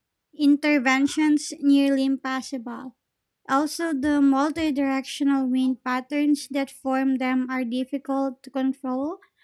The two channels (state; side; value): identical; both; correlation 1.00